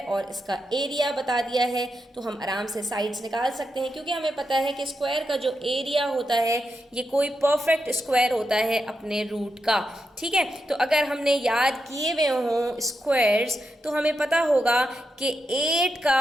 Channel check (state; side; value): normal; both; correlation 0.86